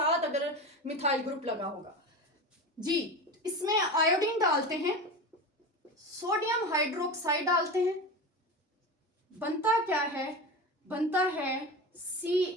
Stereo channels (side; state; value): both; normal; correlation 0.26